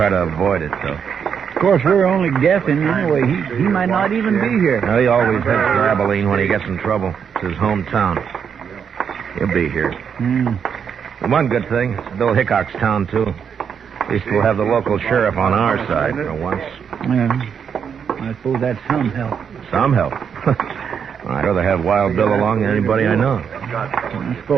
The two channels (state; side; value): quieter; left; 7.3 dB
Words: to avoid it, though. Of course, we're only guessing anyway. He might not even be here. No, he always heads for Abilene when he gets in trouble. It's his hometown. He'll be here. One good thing, it's Bill Hickok's town, too. At least we'll have the local sheriff on our side for once. Yeah. I suppose that's some help. Some help. I'd rather have Wild Bill along than anybody I know. I